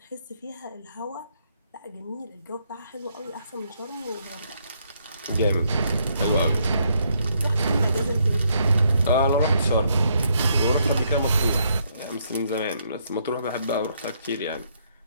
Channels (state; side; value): inverted; both; correlation -0.73